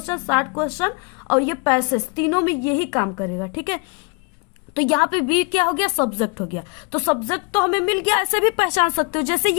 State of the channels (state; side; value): quieter; right; 33.8 dB